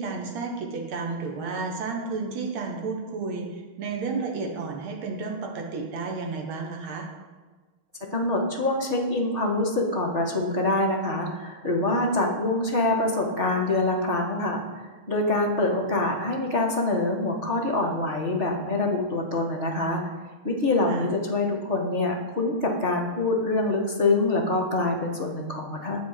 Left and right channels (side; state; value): left; late; 6.4 ms